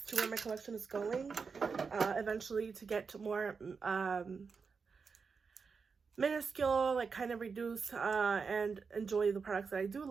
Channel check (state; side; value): quieter; left; 5.3 dB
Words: to where my collection is going eventually, to get more minuscule, like kind of reduce and enjoy the products that I do